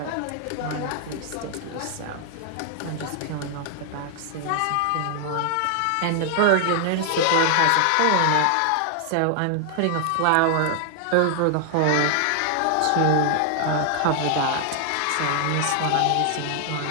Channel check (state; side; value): different; both; correlation 0.00